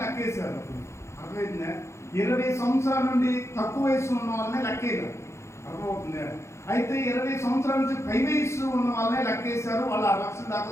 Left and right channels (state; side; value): late; right; 0.13 ms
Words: లెక్కేశారు. అర్థమైందా? 20 సంవత్సరాల నుండి తక్కువ వయసు ఉన్న వాళ్ళని లెక్కేయరు. అర్థమవుతుందా? అయితే 20 సంవత్సరాల నుంచి పై వయసు ఉన్న వాళ్ళనే లెక్కేశారు. వాళ్ళు 6 లక్షల దాకా